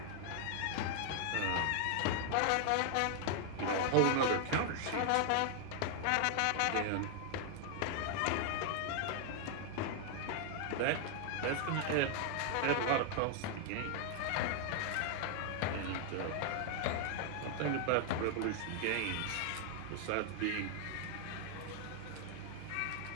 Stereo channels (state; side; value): different; both; correlation 0.00